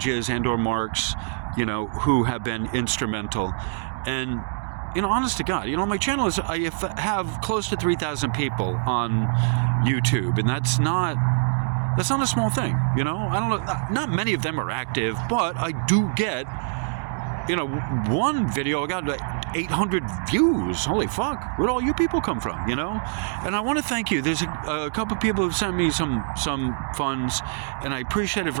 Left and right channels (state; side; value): silent; left; digital silence